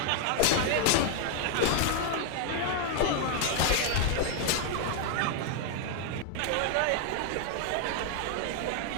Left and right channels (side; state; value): both; different; correlation 0.00